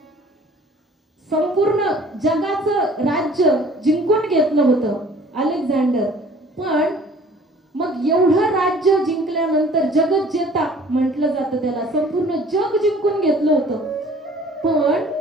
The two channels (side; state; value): both; normal; correlation 0.51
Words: संपूर्ण जगाचं राज्य जिंकून घेतलं होतं अलेक्झांडर. पण मग एवढं राज्य जिंकल्यानंतर जगज्जेता म्हटलं जातं त्याला, संपूर्ण जग जिंकून घेतलं होतं.